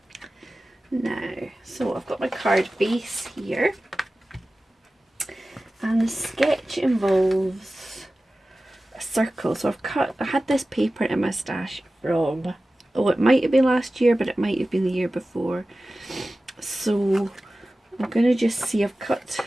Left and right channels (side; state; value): both; normal; correlation 0.96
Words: Now, so I've got my card base here, and the sketch involves a circle. So I had this paper in my stash from, oh, it might have been last year, but it might have been the year before. So I'm going to just see, I've cut